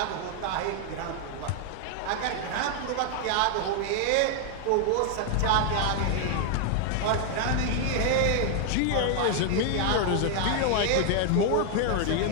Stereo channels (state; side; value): different; both; correlation 0.00